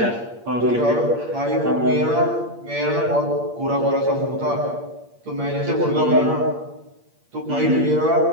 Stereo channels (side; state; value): left; late; 8.6 ms